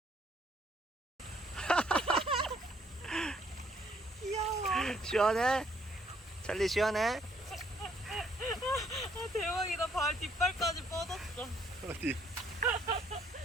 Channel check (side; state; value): both; normal; correlation 0.67